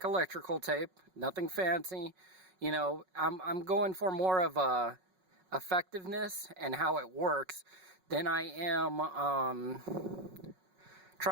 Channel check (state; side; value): late; left; 5.4 ms